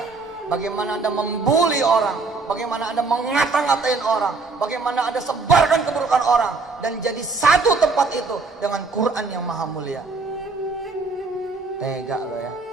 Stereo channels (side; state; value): left; quieter; 4.0 dB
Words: Bagaimana Anda membuli orang. Bagaimana Anda mengata-ngatain orang. Bagaimana Anda sebarkan keburukan orang. Dan jadi satu tempat itu dengan Quran yang maha mulia. Tega lo ya.